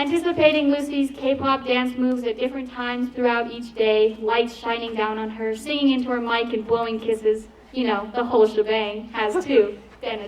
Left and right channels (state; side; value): identical; both; correlation 1.00